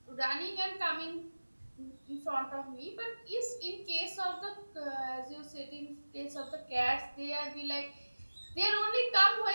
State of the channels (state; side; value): inverted; both; correlation -1.00